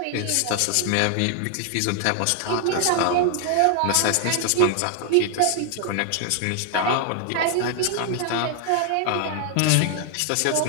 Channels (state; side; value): different; both; correlation 0.00